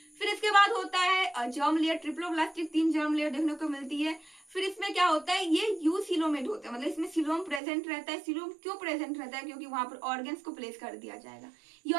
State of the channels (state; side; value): drops out; left; at 7.6 s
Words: फिर इसके बाद होता है germ layer, triploblastic 3 germ layer देखने को मिलती है। फिर इसमें क्या होता है, ये यूसिलोमेट होता है, मतलब इसमें सिलोम प्रेजेंट रहता है। सिलोम क्यों प्रेजेंट रहता है, क्योंकि वहां पर ऑर्गन्स को प्लेस कर दिया जाएगा। ये